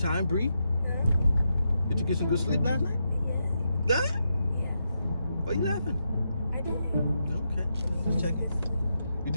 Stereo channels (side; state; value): both; inverted; correlation -0.84